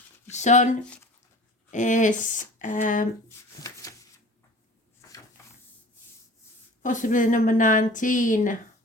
The sun is possibly number 19.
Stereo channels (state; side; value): normal; both; correlation 0.42